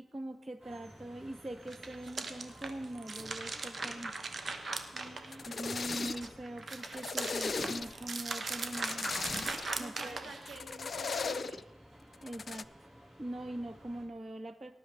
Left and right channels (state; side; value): normal; both; correlation 0.87